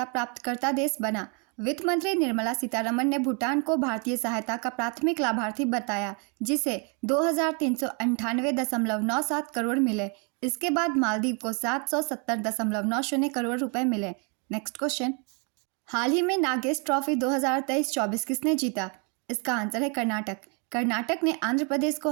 प्राप्तकर्ता देश बना। वित्त मंत्री निर्मला सीतारमण ने भूटान को भारतीय सहायता का प्राथमिक लाभार्थी बताया, जिसे 2398.97 करोड़ मिले। इसके बाद मालदीव को 770.90 करोड़ रुपए मिले। नेक्स्ट क्वेश्चन, हाल ही में नागेश ट्रॉफी 2023-24 किसने जीता? इसका आंसर है कर्नाटक। कर्नाटक ने आंध्र प्रदेश को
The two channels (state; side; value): quieter; left; 35.8 dB